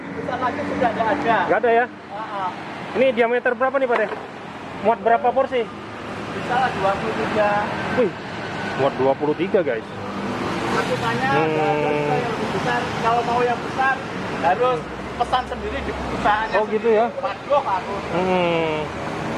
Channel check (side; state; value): both; identical; correlation 1.00